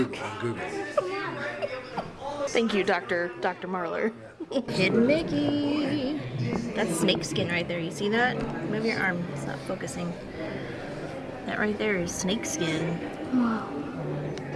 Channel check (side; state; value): both; identical; correlation 1.00